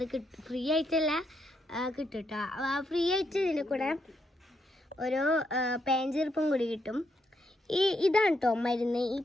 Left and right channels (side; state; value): both; normal; correlation 0.78